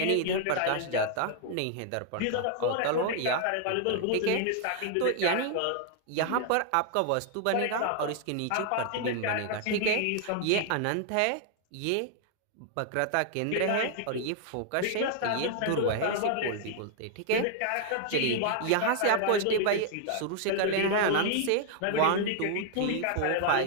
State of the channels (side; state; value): both; different; correlation 0.00